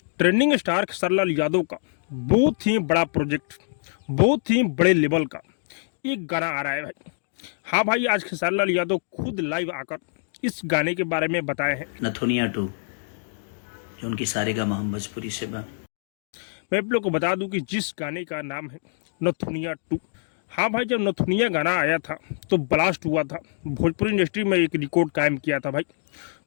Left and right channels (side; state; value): right; silent; digital silence